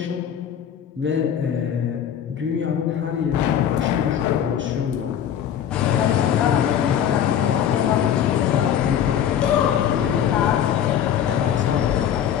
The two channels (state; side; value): quieter; right; 9.4 dB